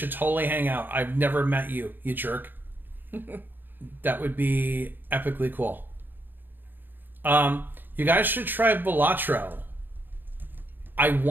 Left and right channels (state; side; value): late; left; 0.093 ms